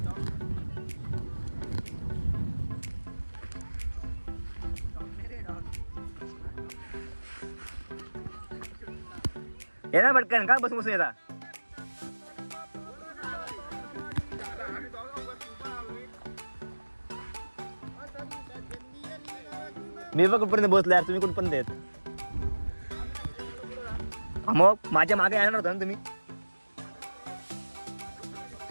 येणार पटकन का बसून येता. मी बघ कुठपर्यंत बसलो यार तुम्ही कुठपर्यंत येत. मग माझ्या मागे येणार होता ना तुम्ही.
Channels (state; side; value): inverted; both; correlation -1.00